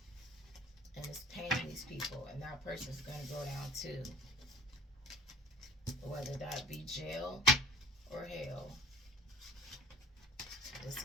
and it's paying these people, and that person's going to go down too, whether that be jail or hell. It's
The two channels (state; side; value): normal; both; correlation 0.45